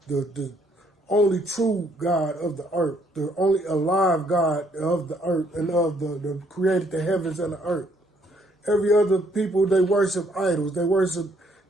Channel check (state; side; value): normal; both; correlation 0.68